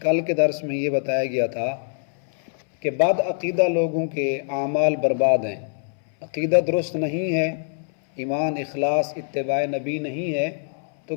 کے درس میں یہ بتایا گیا تھا کہ بد عقیدہ لوگوں کے اعمال برباد ہیں، عقیدہ درست نہیں ہے، ایمان اخلاص اتباع نبی نہیں ہے تو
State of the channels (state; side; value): silent; right; 63 dB below the other